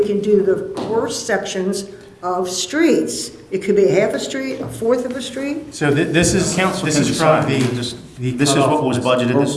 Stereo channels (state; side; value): identical; both; correlation 1.00